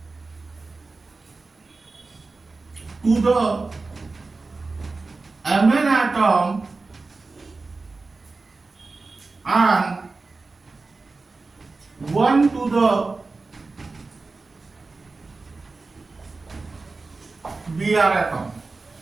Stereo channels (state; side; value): quieter; left; 3.8 dB